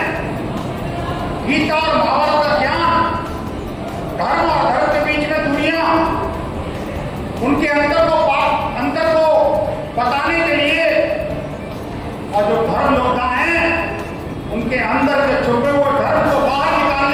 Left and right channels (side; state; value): both; identical; correlation 1.00